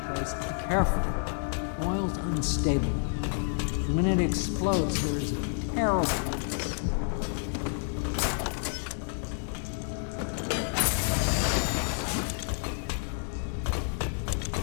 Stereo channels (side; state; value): right; silent; 58 dB below the other